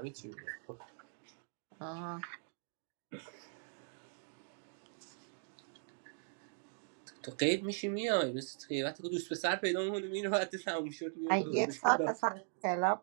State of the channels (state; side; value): silent; left; digital silence